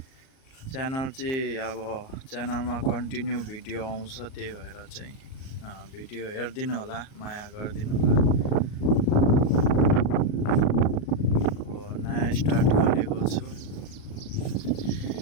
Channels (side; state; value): right; late; 38 ms